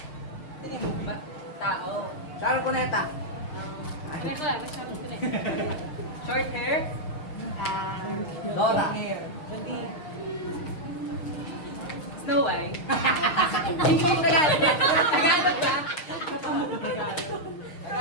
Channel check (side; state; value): right; late; 6.5 ms